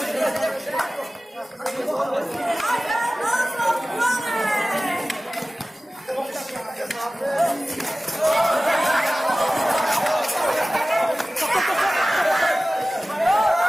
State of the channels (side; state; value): both; normal; correlation 0.97